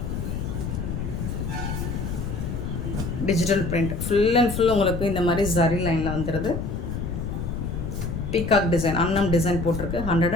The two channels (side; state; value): left; noise; rumble, 4 dB below the sound